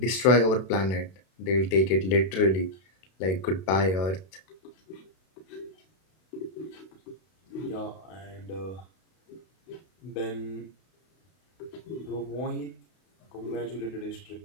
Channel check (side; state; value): right; late; 32 ms